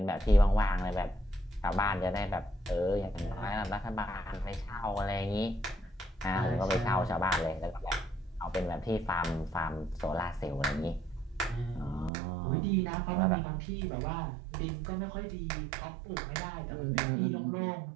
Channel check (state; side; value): drops out; left; at 12.1 s